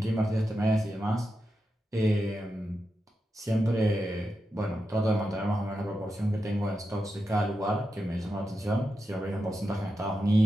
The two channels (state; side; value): normal; both; correlation 0.88